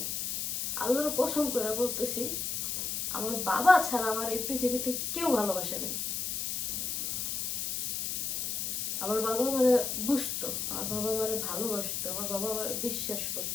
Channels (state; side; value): noise; left; hiss, 1 dB below the sound